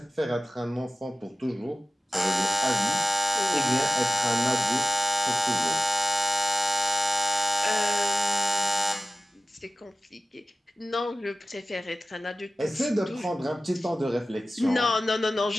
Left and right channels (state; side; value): normal; both; correlation 0.96